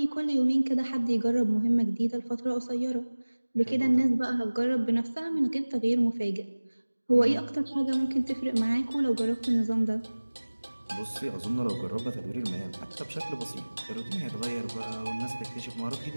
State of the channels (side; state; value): both; inverted; correlation -1.00